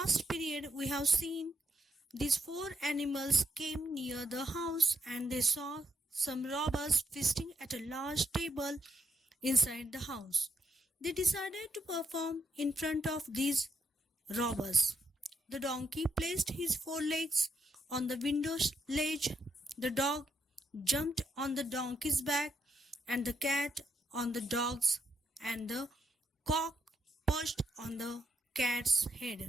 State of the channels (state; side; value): normal; both; correlation 0.76